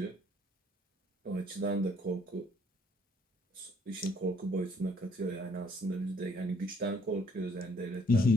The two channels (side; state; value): both; normal; correlation 0.64